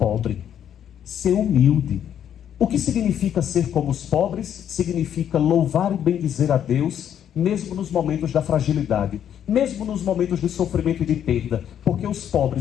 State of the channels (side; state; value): right; quieter; 9.6 dB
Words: ser humilde. O que significa ser como os pobres? Significa louvar e bendizer a Deus, mesmo nos momentos da fragilidade, mesmo nos momentos de sofrimento e de perda, porque os